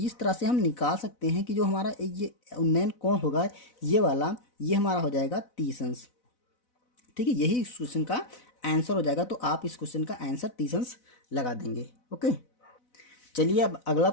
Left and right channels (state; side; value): late; right; 4.0 ms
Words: तरह से हम निकाल सकते हैं कि जो हमारा ये उन्नयन कोण होगा ये वाला, ये हमारा हो जाएगा 30 अंश। ठीक है, यही इस क्वेश्चन का आंसर हो जाएगा। तो आप इस क्वेश्चन का आंसर 30 अंश लगा देंगे। ओके, चलिए अब अगला